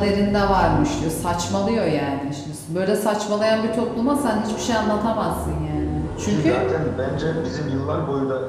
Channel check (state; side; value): identical; both; correlation 1.00